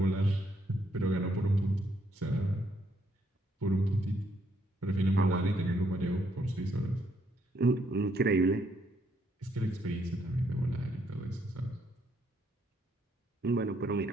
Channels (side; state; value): both; normal; correlation 0.73